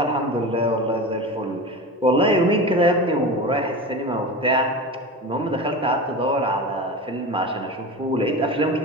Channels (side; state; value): both; normal; correlation 0.28